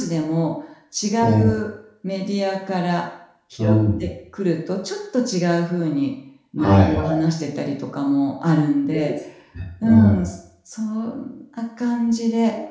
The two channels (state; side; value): identical; both; correlation 1.00